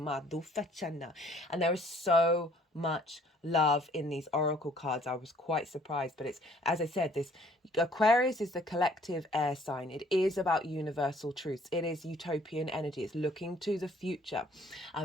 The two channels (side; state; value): both; normal; correlation 0.59